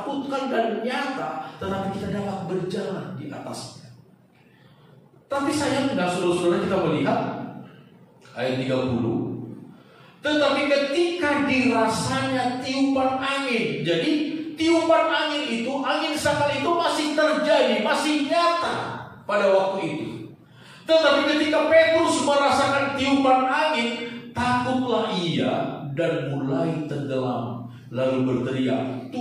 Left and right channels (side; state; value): both; identical; correlation 1.00